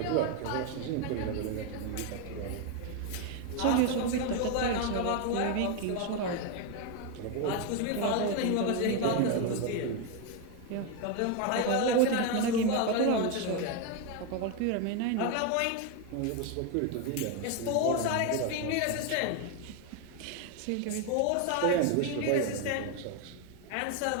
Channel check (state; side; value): different; both; correlation 0.02